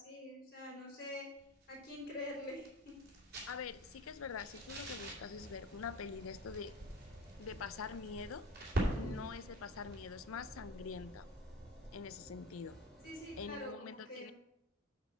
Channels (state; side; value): normal; both; correlation 0.38